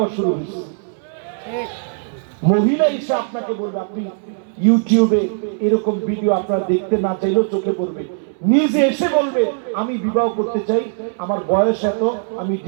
শুরু হয়েছে। মহিলা এসে আপনাকে বলবে, আপনি ইউটিউবে এরকম ভিডিও আপনারা দেখতে না চাইলেও চোখে পড়বে, নিজে এসে বলবে আমি বিবাহ করতে চাই, আমার বয়স এত, আমি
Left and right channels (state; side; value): silent; left; 65 dB below the other